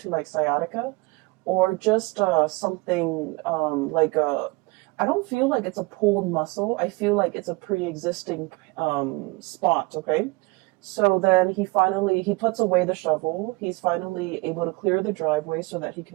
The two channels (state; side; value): quieter; left; 24.5 dB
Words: like sciatica, or just something like I don't feel like it's a pulled muscle. I feel like it's a pre-existing spot, okay? So then he puts away the shovel. He's finally able to clear the driveway so that he